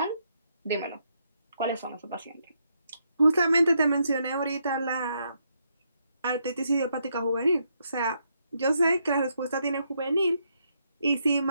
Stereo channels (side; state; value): both; inverted; correlation -0.77